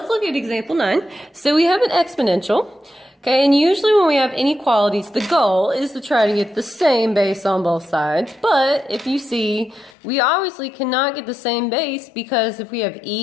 look at example 9. So we have an exponential. Okay, and usually when we have inequalities, the goal is to try to get the same base on both sides. But if you see, we obviously cannot get the same base because if we have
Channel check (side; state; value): right; drops out; at 9.9 s